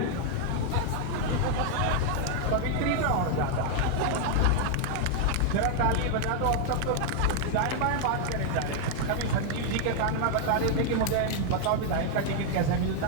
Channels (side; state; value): both; different; correlation 0.00